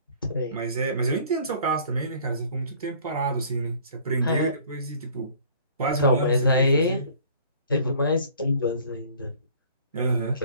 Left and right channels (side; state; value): both; inverted; correlation -0.52